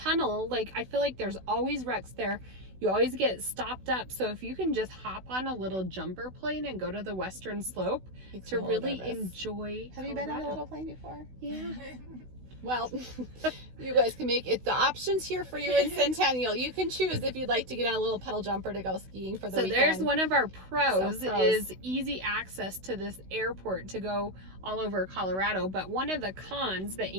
like, I feel like there's always wrecks there. You always get stopped up. So if you can just hop on a little jumper plane and go to the Western Slope Makes to me a little really nervous. enjoy Have you been on a Colorado. little plane before? Yeah. Well, you guys can make it. The options here for you in Centennial. You can choose if you'd like to get on a little pedal jumper to go skiing for the So weekend. there's one of our pros, So pros. is easy access to this airport to go all over Colorado. But one of the cons that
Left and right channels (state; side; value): late; left; 16 ms